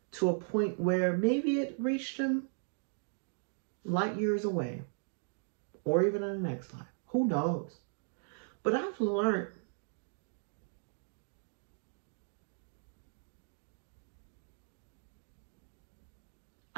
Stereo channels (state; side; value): silent; left; digital silence